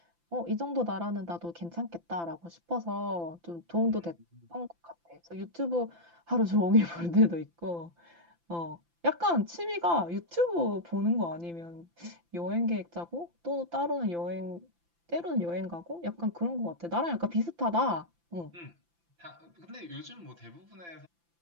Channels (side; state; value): left; late; 5.9 ms